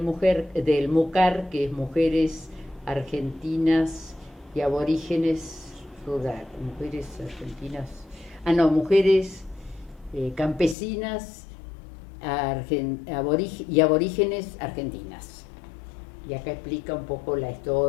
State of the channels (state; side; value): drops out; right; at 10.8 s